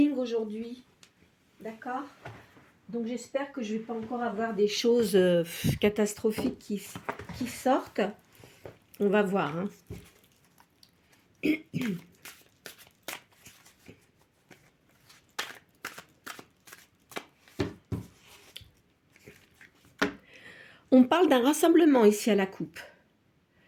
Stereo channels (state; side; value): identical; both; correlation 1.00